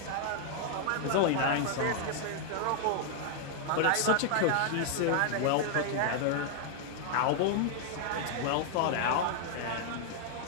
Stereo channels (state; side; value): different; both; correlation 0.00